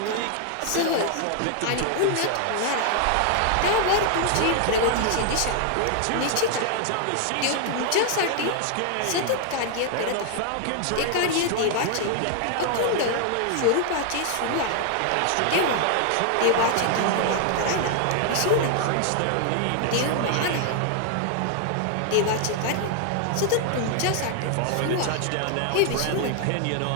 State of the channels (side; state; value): both; different; correlation 0.00